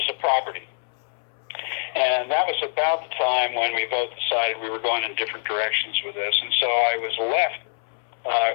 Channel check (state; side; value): silent; right; 62 dB below the other